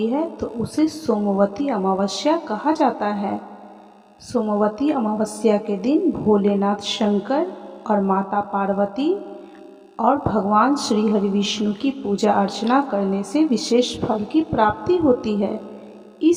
है तो उसे सोमवती अमावस्या कहा जाता है। सोमवती अमावस्या के दिन भोलेनाथ शंकर और माता पार्वती और भगवान श्री हरि विष्णु की पूजा अर्चना करने से विशेष फल की प्राप्ति होती है।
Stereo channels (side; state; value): both; identical; correlation 1.00